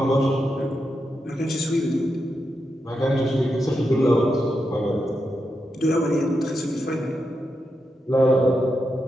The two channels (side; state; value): both; normal; correlation 0.86